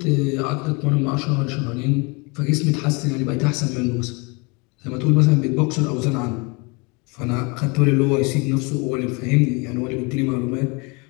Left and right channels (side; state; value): right; quieter; 29.4 dB